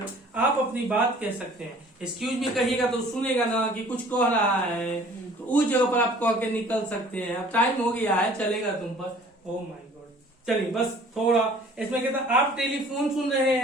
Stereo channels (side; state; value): both; normal; correlation 0.51